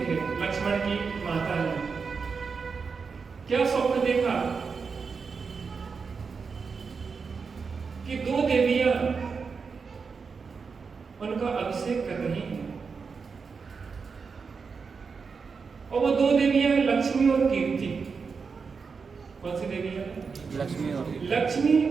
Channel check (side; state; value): left; quieter; 5.3 dB